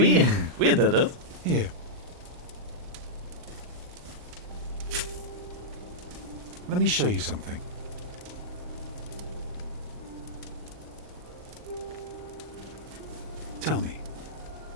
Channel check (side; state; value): left; late; 39 ms